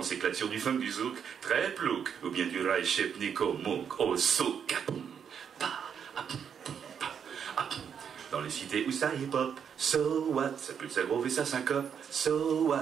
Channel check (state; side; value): quieter; left; 7.6 dB